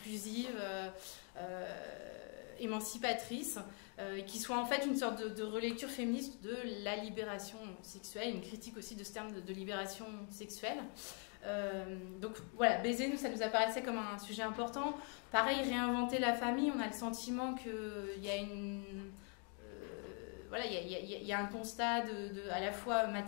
émancipatrice, qui soit en fait une sorte de relecture féministe de la libération sexuelle, une critique aussi de ce terme de libération sexuelle. Donc voilà, baiser, nous, ça nous apparaissait comme un sujet important. Pareil, réinventer la famille, on a le sentiment qu'il y a il y a un constat à la fois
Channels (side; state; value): right; quieter; 39.9 dB